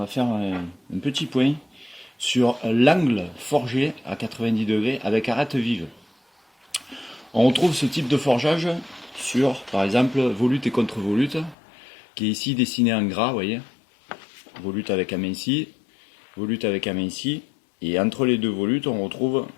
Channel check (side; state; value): right; drops out; at 11.6 s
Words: faire un petit point sur l'angle forgé à 90 degrés avec arête vive. On retrouve ce type de forgeage sur par exemple volute et contre-volute qui est ici dessiné en gras, vous voyez. Volute avec aminci, volute avec aminci, et entre les deux volutes on retrouve